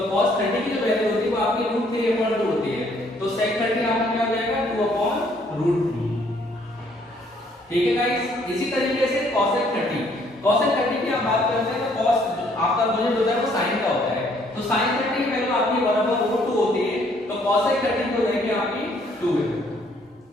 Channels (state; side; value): normal; both; correlation 0.65